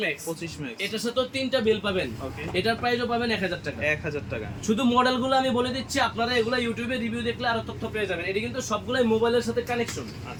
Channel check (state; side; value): identical; both; correlation 1.00